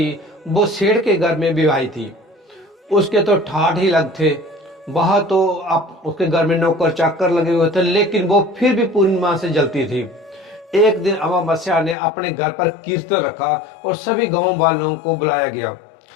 वो सेठ के घर में विवाही थी। उसके तो ठाठ ही लग थे। वह तो आप उसके घर में नौकर चाकर लगे हुए थे, लेकिन वो फिर भी पूर्णिमा से जलती थी। एक दिन अमावस्या ने अपने घर पर कीर्तन रखा और सभी गांव वालों को बुलाया गया,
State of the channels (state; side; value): drops out; right; at 12.0 s